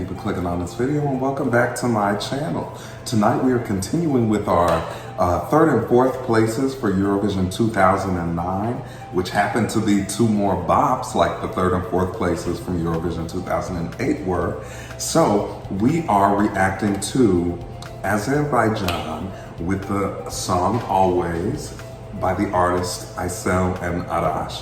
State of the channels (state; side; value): identical; both; correlation 1.00